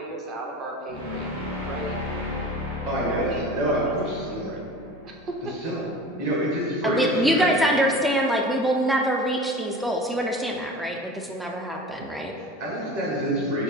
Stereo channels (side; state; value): both; normal; correlation 0.37